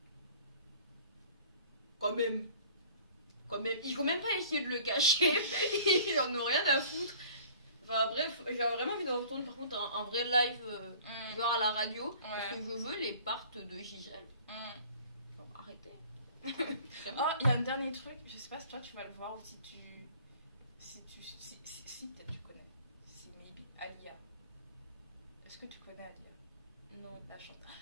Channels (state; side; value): inverted; both; correlation -0.49